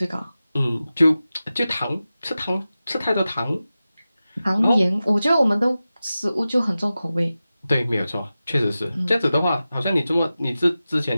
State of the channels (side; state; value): both; inverted; correlation -0.94